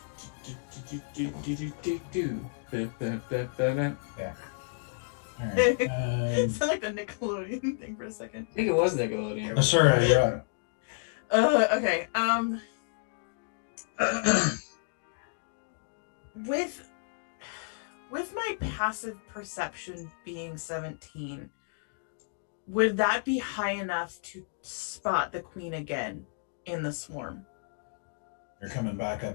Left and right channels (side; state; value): right; silent; digital silence